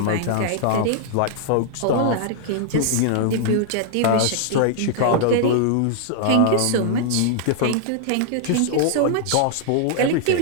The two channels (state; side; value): different; both; correlation -0.01